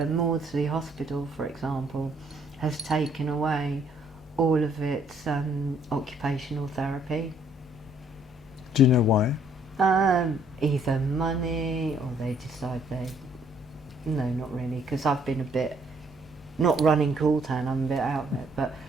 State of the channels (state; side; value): normal; both; correlation 0.65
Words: Maudsley Hospital, for example, has taken away all of its occupational therapy. Do you know why? Either money or they decide no, not really, because I've been a bit, not running Cooltown, I'm a bit out of it, but